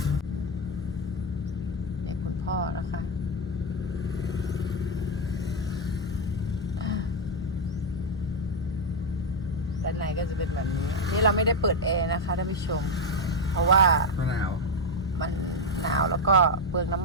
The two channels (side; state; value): both; normal; correlation 0.04